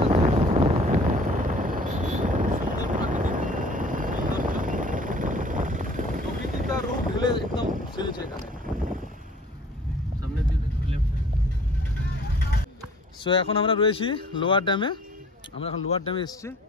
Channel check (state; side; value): normal; both; correlation 0.51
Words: সুন্দর প্রাকৃতিক সৌন্দর্য, প্রকৃতি তার রূপ ঢেলে একদম ছেড়েছে এখানে। সামনের দিকে লেফট। সো এখন আমরা রয়েছি লোয়ার ড্যামে। আমরা এখন লোয়ার ড্যামে এসেছি।